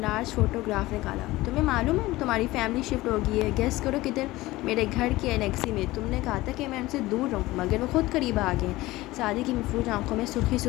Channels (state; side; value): quieter; right; 18.6 dB